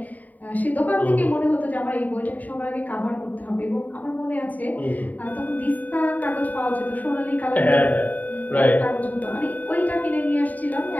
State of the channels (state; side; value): late; right; 0.076 ms